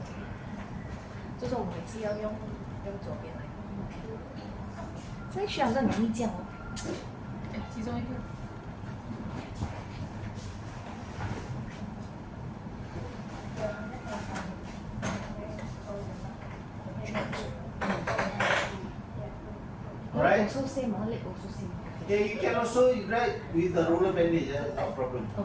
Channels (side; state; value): both; identical; correlation 1.00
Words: 就是我每次要用左边来。这需要很容易这样哦。哎，其中一个。Alright? Also same, leg also same. Okay, you can also write with the roller bandage, no problem.